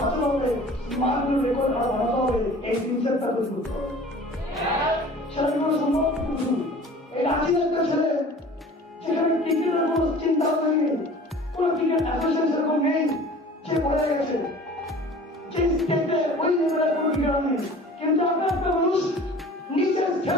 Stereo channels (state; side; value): normal; both; correlation 0.44